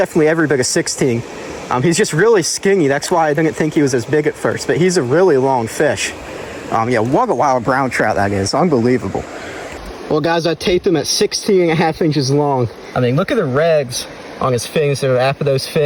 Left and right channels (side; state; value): both; identical; correlation 1.00